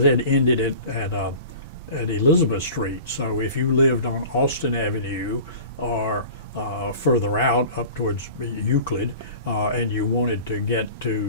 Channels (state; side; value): inverted; both; correlation -0.40